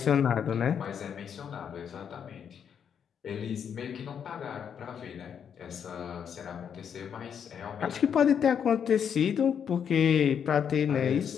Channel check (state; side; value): quieter; right; 7.8 dB